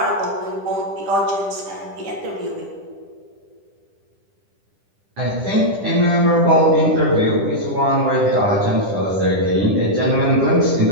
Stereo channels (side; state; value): left; late; 10 ms